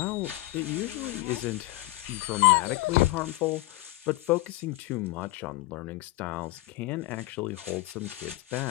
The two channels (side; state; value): right; quieter; 19.1 dB